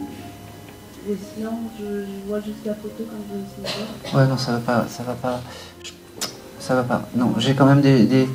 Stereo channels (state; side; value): identical; both; correlation 1.00